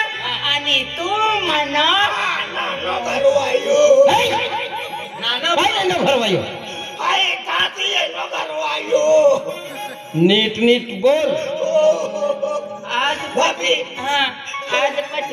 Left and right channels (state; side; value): identical; both; correlation 1.00